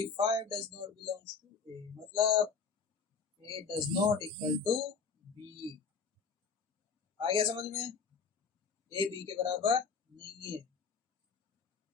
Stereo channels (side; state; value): right; quieter; 5.4 dB